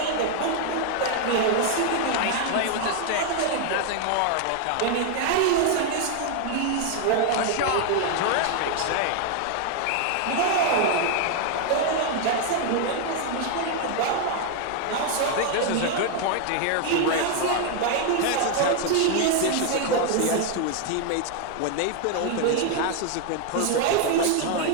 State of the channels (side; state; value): both; different; correlation 0.00